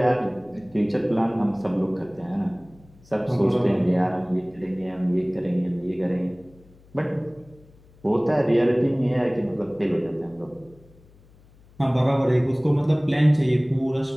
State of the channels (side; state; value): left; noise; hum, 27 dB below the sound